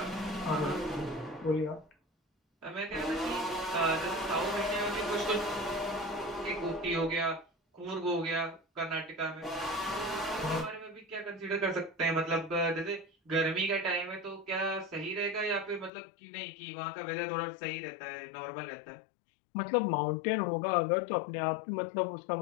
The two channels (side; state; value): right; drops out; at 15.9 s